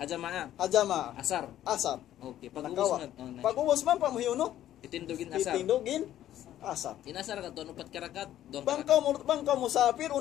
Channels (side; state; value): right; quieter; 12.3 dB